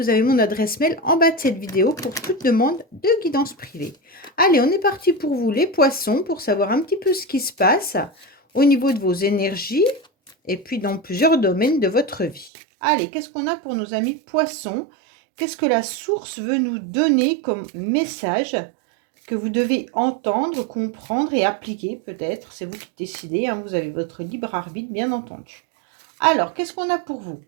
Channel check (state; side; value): drops out; left; at 12.5 s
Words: avez mon adresse mail en bas de cette vidéo pour toute demande de guidance privée. Allez, on est parti pour vous les poissons pour savoir un petit peu ce qui se passe au niveau de vos énergies et puis dans plusieurs domaines de votre vie. Allez, qu'est-ce qu'on a pour nos amis poissons? Qu'est-ce que la source veut nous donner comme message que vous devez entendre, comprendre et appliquer peut-être? C'est vous qui décidez, hein, vous avez votre libre arbitre bien entendu. Alors, qu'est-ce qu'on a pour vous?